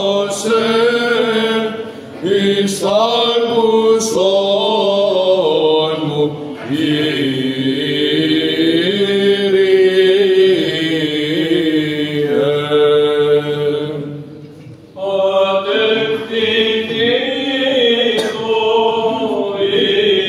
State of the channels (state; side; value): identical; both; correlation 1.00